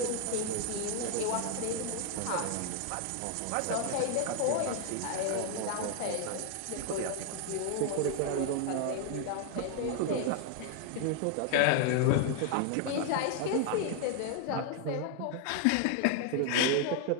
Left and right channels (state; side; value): different; both; correlation 0.00